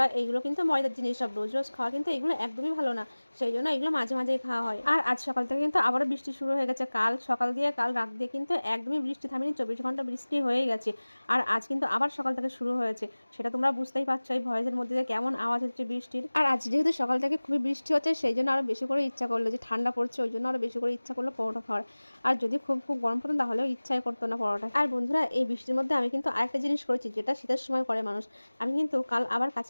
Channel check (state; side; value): inverted; both; correlation -1.00